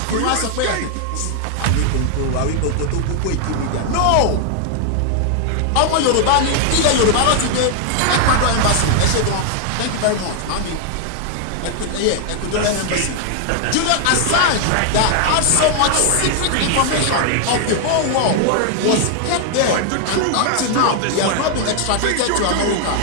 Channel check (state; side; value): different; both; correlation 0.00